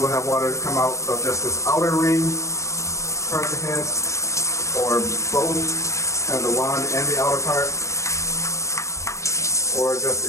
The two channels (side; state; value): right; late; 0.15 ms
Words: have water come out of just this outer ring part of the head, or both, kind of the wand and the outer part, or just